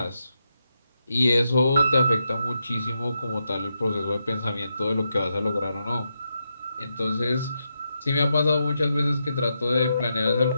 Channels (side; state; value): both; inverted; correlation -0.84